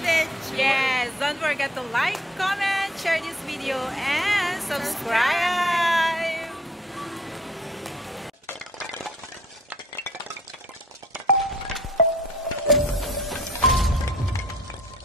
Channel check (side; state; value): both; normal; correlation 0.58